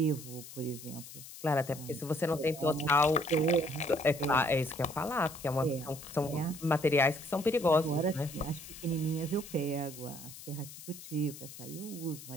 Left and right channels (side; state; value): left; noise; hiss, 14 dB below the sound